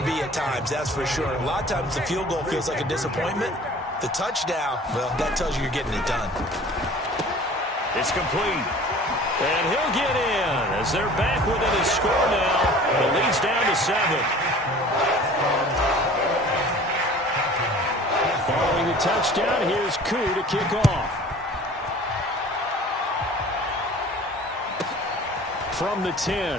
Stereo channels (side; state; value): both; normal; correlation 0.45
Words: be at times, that's for sure. A lot of times the field goal feels like a disappointment. The touchdown, well, that tells you you're getting it done. It's complete. And he'll get in as they're back within his score now. The lead's down to 7. Following the touchdown, here's Koo to kick off. From the 10.